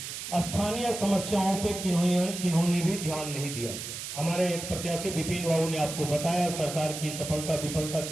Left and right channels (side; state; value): right; noise; hiss, 7 dB below the sound